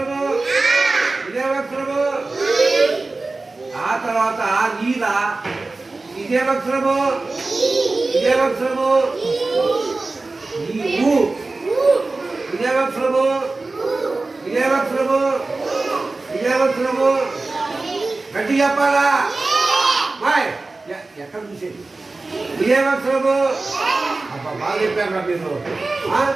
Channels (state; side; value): quieter; left; 3.4 dB